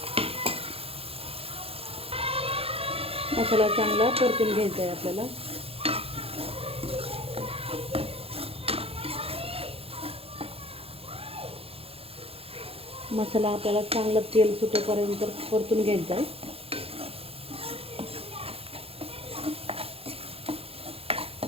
मसाला चांगला परतून घ्यायचा आहे आपल्याला. मसाला आपल्याला चांगलं तेल सुटेपर्यंत परतून घ्यायचा आहे.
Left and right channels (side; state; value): left; late; 0.28 ms